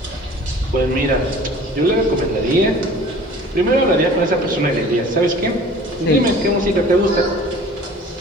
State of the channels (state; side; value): normal; both; correlation 0.46